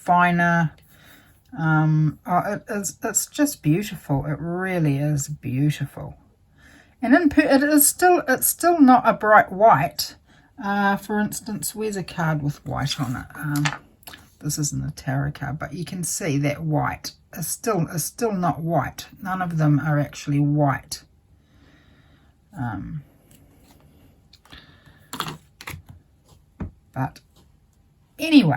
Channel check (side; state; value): both; identical; correlation 1.00